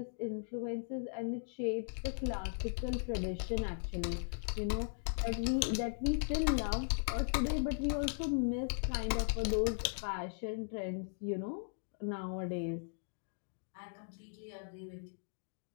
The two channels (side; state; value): right; silent; digital silence